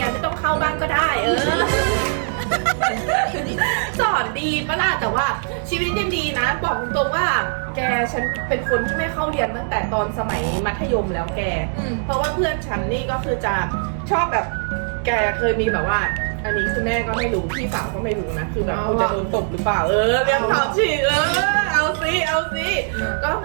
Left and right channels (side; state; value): left; silent; digital silence